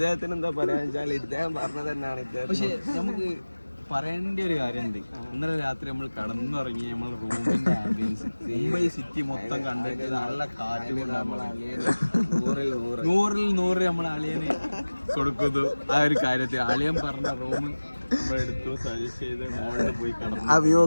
എന്താ പറയാന്ന് വെച്ചാൽ ഇദ്ദേഹം പറഞ്ഞത് തന്നെയാണ്. പക്ഷെ നമുക്ക് പറയേണ്ട ഒരു കാര്യമുണ്ട്. ഇന്നലെ രാത്രി നമ്മൾ കടന്നുറങ്ങി, നമ്മൾ റൂമിന്റെ ആംബിയൻസ് മുംബൈ സിറ്റി മൊത്തം കണ്ടിട്ട് നല്ല കാറ്റ് കൊണ്ടാകുമ്പോൾ 100-100 നമ്മൾ അളിയന് കൊടുക്കുന്നു. ആ ഒരു കാര്യത്തിൽ അളിയൻ പറഞ്ഞ റൂം നമ്മളെടുത്തു, സജസ്റ്റ് ചെയ്ത് മോളിൽ പോയി കടന്നു.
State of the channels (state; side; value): inverted; both; correlation -1.00